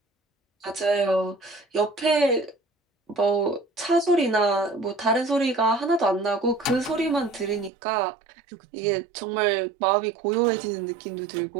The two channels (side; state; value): left; drops out; at 7.7 s